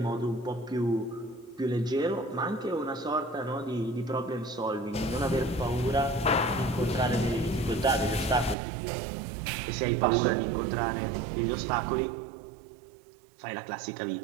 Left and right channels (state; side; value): drops out; left; at 8.6 s